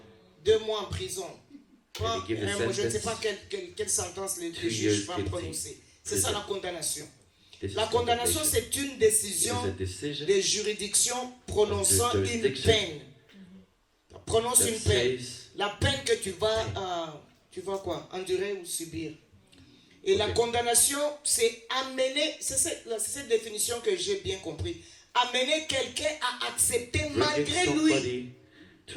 2 mois en prison. Pas, And he gives a je ne sais sentence, pas quelle sentence le 2 juge years va guilty. prononcer. C'est ça la condamnation. this is La condamnation, condemnation. c'est une It décision is a decision des juridictions prononçant Of the une jurisdiction. peine. Prononce that une peine. says La peine que tu vas quoi? Endurer ou subir. Et la Ok. condamnation, c'est amener, c'est cette définition que j'ai bien compris. Amener quelqu'un à accepter bringing malgré lui. somebody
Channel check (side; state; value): both; identical; correlation 1.00